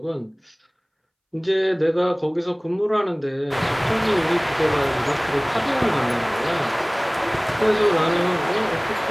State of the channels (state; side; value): identical; both; correlation 1.00